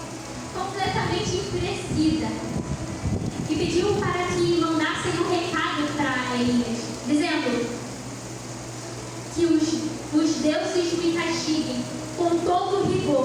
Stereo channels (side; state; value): both; identical; correlation 1.00